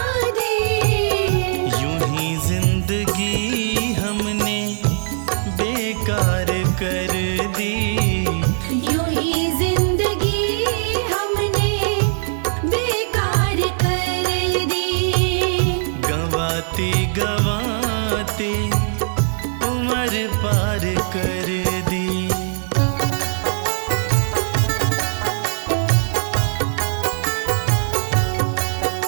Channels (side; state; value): left; silent; digital silence